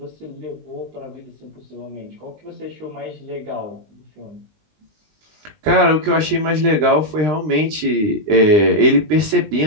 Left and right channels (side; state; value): left; late; 19 ms